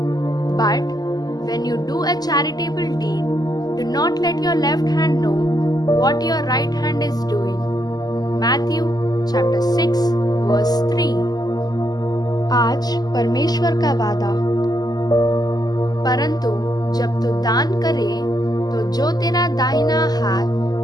But when you do a charitable deed, do not let your left hand know what your right hand is doing. Matthew chapter 6 verse 3. आज परमेश्वर का वादा. परंतु जब तू दान करे तो जो तेरा दाहिना हाथ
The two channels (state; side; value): late; right; 0.19 ms